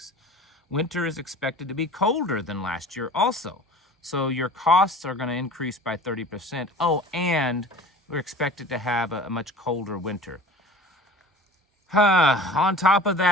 Winter is expected to be colder than last year also. So your costs are going to increase by 30%. Oh, and we're expected to have a much colder winter. On top of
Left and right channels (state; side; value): normal; both; correlation 0.42